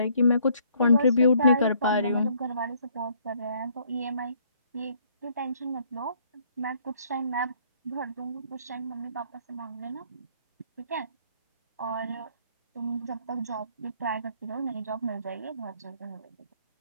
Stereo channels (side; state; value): both; inverted; correlation -0.64